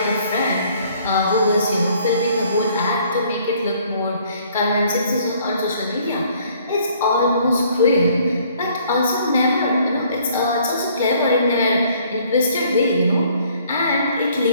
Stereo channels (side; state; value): both; inverted; correlation -0.61